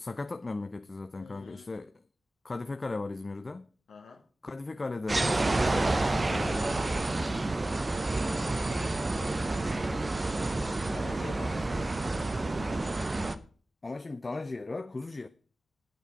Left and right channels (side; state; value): both; normal; correlation 0.96